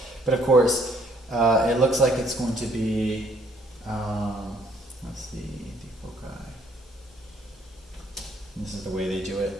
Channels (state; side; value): normal; both; correlation 0.64